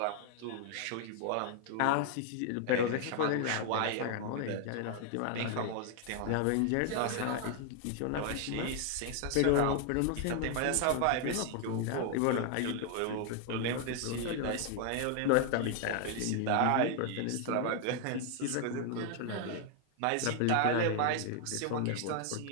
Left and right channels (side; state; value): both; different; correlation 0.00